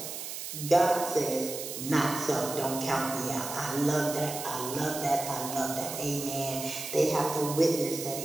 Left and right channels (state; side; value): noise; right; hiss, 7 dB below the sound